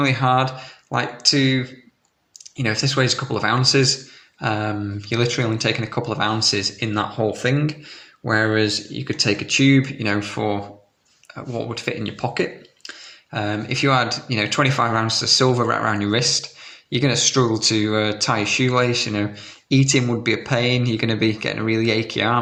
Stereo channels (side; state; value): both; identical; correlation 1.00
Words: hard, like to, you know, if this weighs a couple of ounces, you're literally only taking a couple of ounces in that whole thing, whereas you could take a tube, you know, for what would fit in your pocket. If you had, you know, 25 ounces of silver right around your wrist, you're going to struggle to tie your shoelace. You know, eating would be a pain. You're going to be getting a really achy